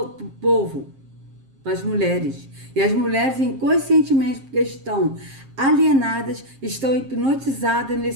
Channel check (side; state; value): left; late; 7.5 ms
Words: povo, para as mulheres. E as mulheres inconscientemente, porque estão alienadas, estão hipnotizadas